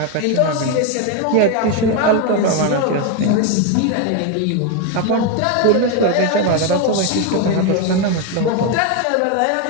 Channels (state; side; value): different; both; correlation 0.02